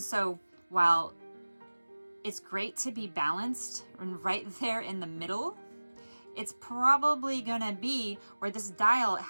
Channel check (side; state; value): both; inverted; correlation -1.00